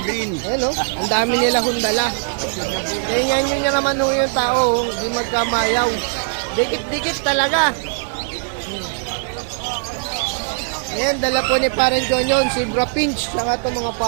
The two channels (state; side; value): silent; left; digital silence